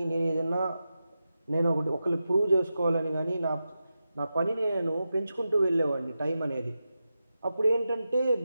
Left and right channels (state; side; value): inverted; both; correlation -0.91